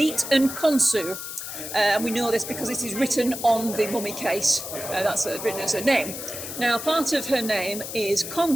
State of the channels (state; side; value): noise; left; hiss, 8 dB below the sound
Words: and Konsu. And we know this because it is written on the mummy case. That's written as her name. Now, part of her name is